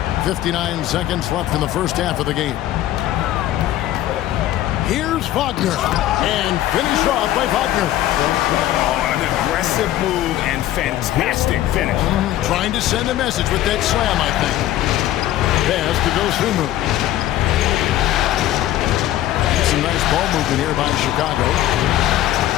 59 seconds left in the first half of the game. Here's Wagner. And finished off by Wagner. Oh, an aggressive move and fantastic finish. Trying to send a message with that slam, I think. Pass to Dosunmu. Some nice ball movement here by Chicago.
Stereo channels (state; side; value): quieter; right; 13.7 dB